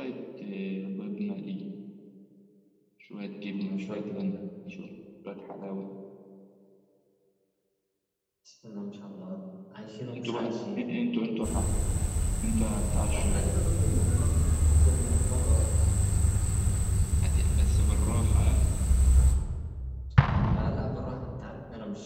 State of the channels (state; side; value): identical; both; correlation 1.00